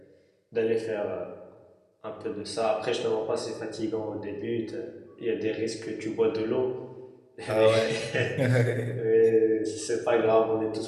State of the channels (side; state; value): both; identical; correlation 1.00